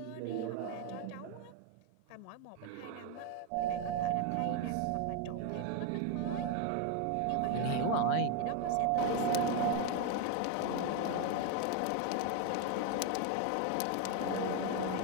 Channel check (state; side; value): different; both; correlation 0.01